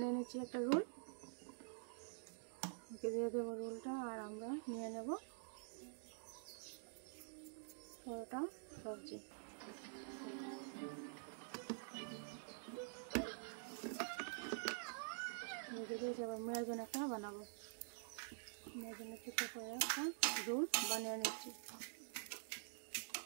নিচ্ছি একটা রোল, দিয়ে দেবো রোলটা, আর আমরা নিয়ে নেব পরোটা সবজি। রেখে দিয়েছি, আবার মেয়ের জন্য একটা বানাবো। মেয়ের জন্য ছোট করে একটা রোল বানিয়ে নিচ্ছি।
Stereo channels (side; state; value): left; silent; digital silence